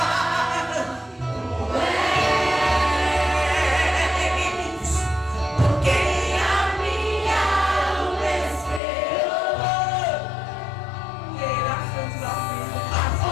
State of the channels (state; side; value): drops out; right; at 8.8 s